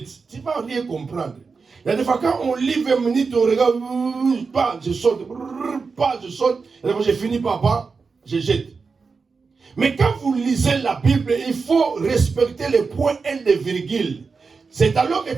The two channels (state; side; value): quieter; left; 4.8 dB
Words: Tu ne vas rien comprendre. Il y a des fois quand on lit 20 minutes, on regarde, pas, je saute, pas, je saute. Et quand j'ai fini par pas, je jette. Mais quand vous lisez la Bible, il faut respecter les points et les virgules. C'est alors